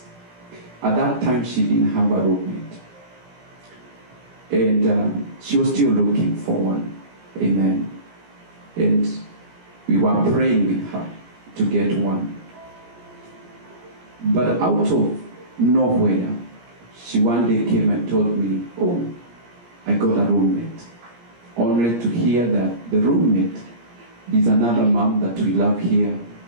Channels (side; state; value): left; late; 17 ms